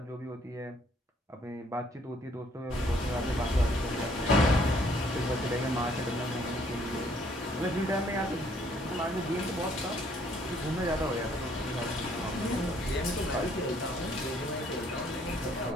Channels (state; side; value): normal; both; correlation 0.64